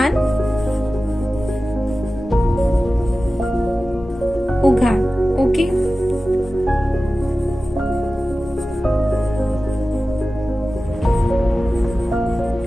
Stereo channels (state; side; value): normal; both; correlation 0.95